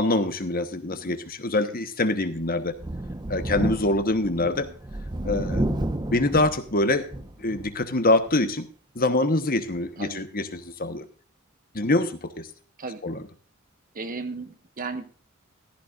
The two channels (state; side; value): normal; both; correlation 0.26